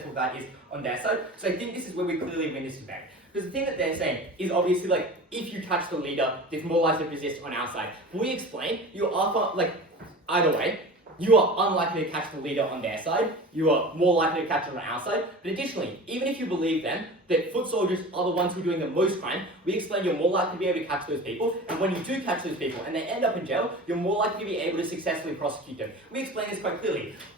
that is on their side. So I think this is where we clearly win this debate. Because the thing that they're saying is obviously if you catch the leader, there's more likely to persist on our side. We explain you are either way, you are unlikely to catch the leader on their side, you are more likely to catch it on our side. But additionally, even if you believe then that foot soldiers are the ones who are doing the most crime, we explain you're more likely to be able to catch those people, and when you do catch those people and they end up in jail, you're more likely to be able to successfully prosecute them. We explain this quite clearly,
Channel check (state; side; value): normal; both; correlation 0.36